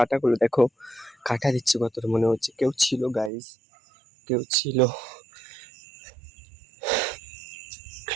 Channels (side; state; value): left; drops out; at 3.3 s